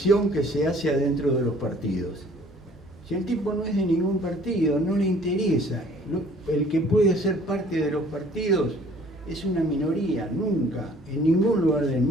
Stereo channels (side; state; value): both; normal; correlation 0.55